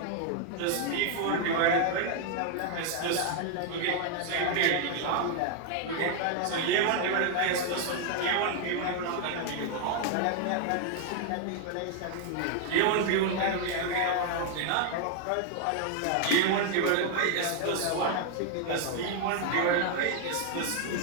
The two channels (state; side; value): different; both; correlation 0.00